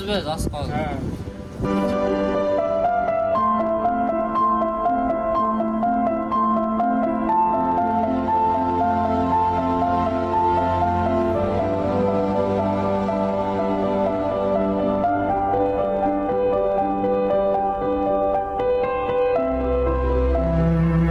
biz, oz qoldi. Ha.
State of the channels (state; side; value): identical; both; correlation 1.00